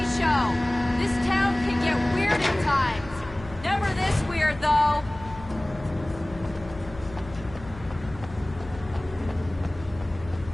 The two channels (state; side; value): noise; left; hum, 16 dB below the sound